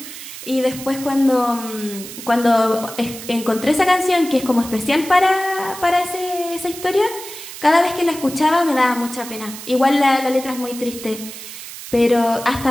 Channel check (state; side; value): noise; right; hiss, 12 dB below the sound